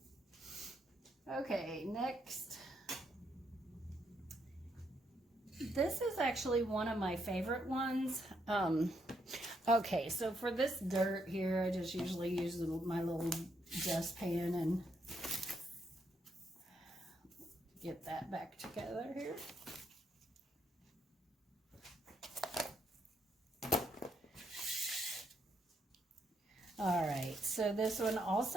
Okay, next. This is actually one of my favorite ones. Okay, so for this dirt here, I just usually use my little dustpan and get that back together here. All right, so this one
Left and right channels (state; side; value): normal; both; correlation 0.76